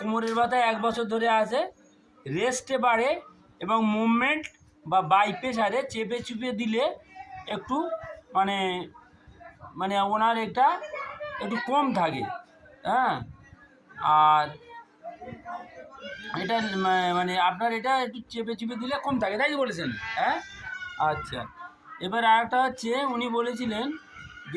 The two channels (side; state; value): both; identical; correlation 1.00